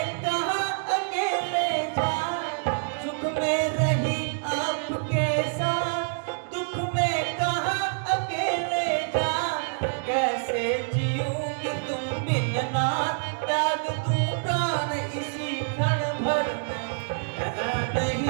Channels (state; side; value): silent; left; digital silence